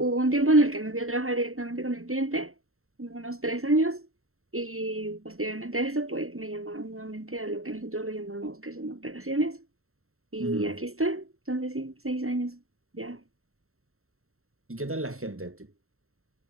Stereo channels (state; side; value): late; left; 0.63 ms